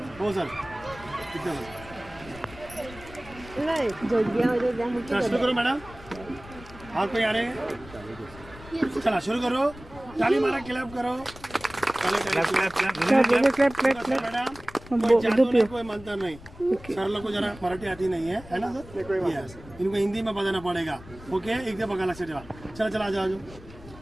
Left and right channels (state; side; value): noise; left; rumble, 18 dB below the sound